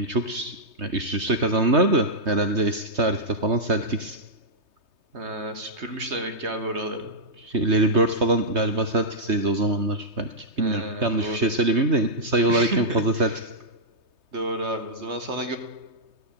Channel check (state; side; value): late; left; 3.2 ms